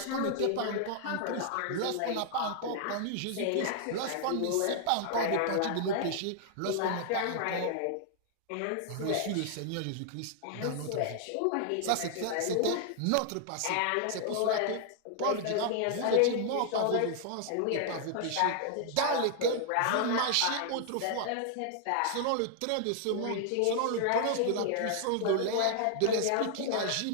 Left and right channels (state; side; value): different; both; correlation -0.01